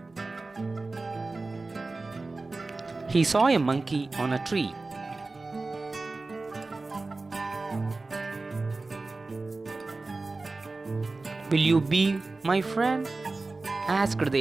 He saw a monkey on a tree. "Will you be my friend?" asked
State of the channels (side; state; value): left; quieter; 3.5 dB